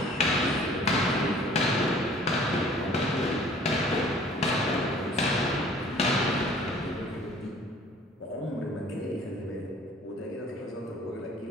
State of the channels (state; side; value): normal; both; correlation 0.52